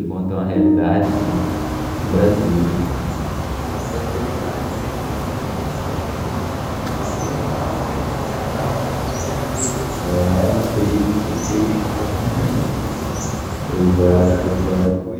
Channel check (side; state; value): both; identical; correlation 1.00